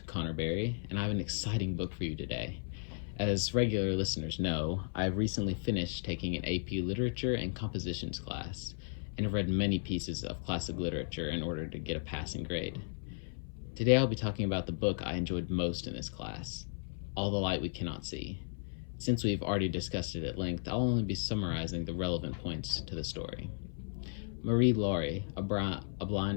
Connor Berry, and I have an exciting book for you today. As regular listeners know, I've recently finished taking an AP Literature and Compositions class, and have read many pieces of classic literature in order to get a passing grade. Today I'll be talking about the book I enjoyed most in this class, All the Light We Cannot See. Since we've already discussed it at length, I'll only be summarizing the relevant points to the story. Marie-Laure, a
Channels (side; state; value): right; silent; 54 dB below the other